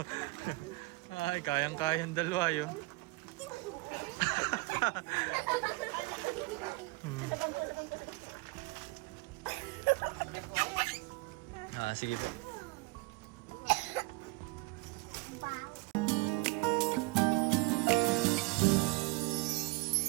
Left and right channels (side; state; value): left; quieter; 24.5 dB